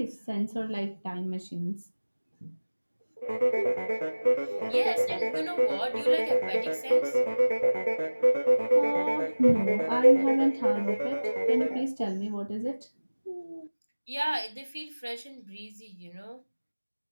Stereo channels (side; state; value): both; inverted; correlation -1.00